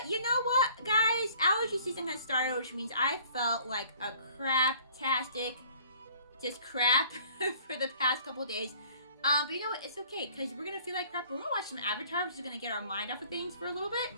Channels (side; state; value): both; inverted; correlation -0.54